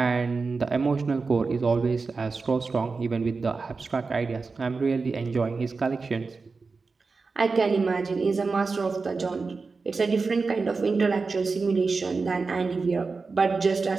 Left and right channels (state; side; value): quieter; left; 4.3 dB